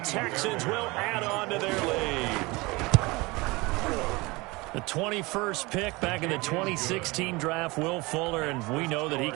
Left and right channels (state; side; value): quieter; left; 23.7 dB